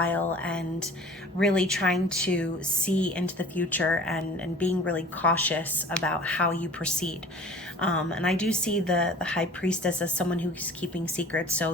and really trying to see into the future, and being really cautious about how you proceed. And I do see the High Priestess as someone who's keeping secrets. So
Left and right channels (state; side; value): normal; both; correlation 0.45